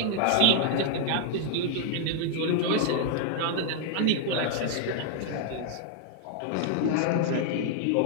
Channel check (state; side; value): different; both; correlation 0.00